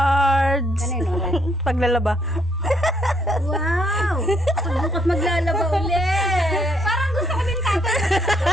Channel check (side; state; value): both; normal; correlation 0.71